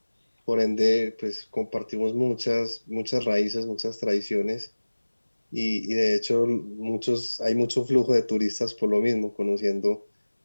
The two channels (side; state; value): both; inverted; correlation -1.00